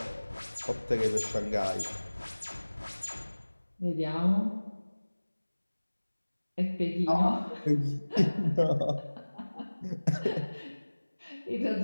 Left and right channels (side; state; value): both; inverted; correlation -1.00